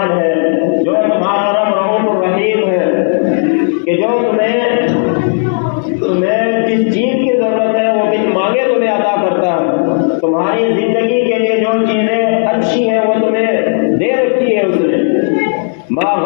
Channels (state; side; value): silent; right; 62 dB below the other